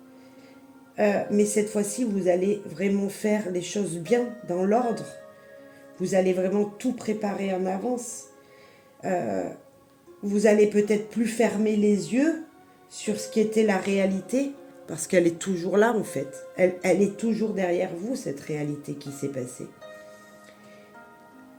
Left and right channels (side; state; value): both; identical; correlation 1.00